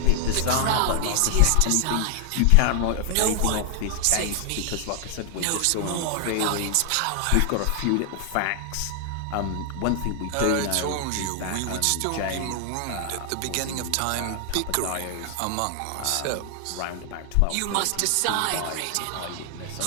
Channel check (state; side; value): different; both; correlation 0.00